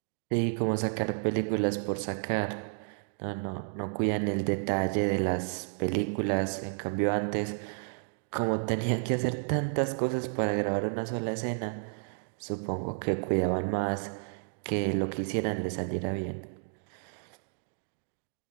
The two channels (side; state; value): left; silent; digital silence